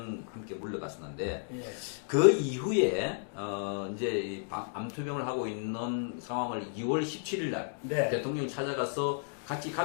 함께 물러갔었는데 예. 그 이후에 이제 이 암투병을 하고 있는 상황을 2월 17일 날 네. 대통령이 찾아가서 같이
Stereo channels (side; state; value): right; silent; digital silence